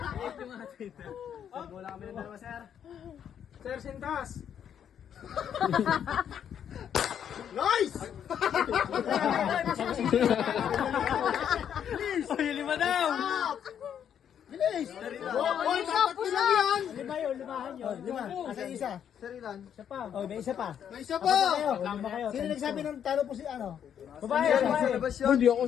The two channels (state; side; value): quieter; right; 8.9 dB